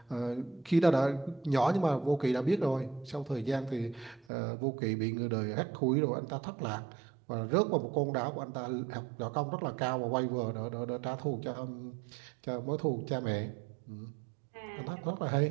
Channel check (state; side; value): drops out; left; at 4.2 s